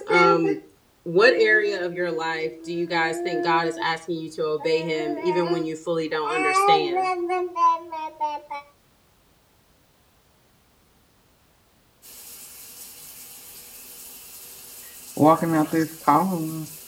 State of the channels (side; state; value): both; identical; correlation 1.00